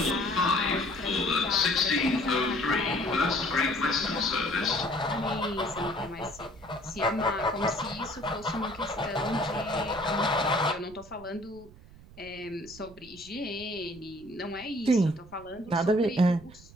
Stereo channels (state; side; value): noise; right; rumble, 21 dB below the sound